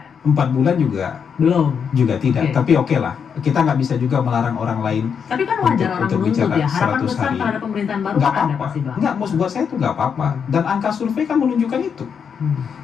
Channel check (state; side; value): quieter; right; 6.9 dB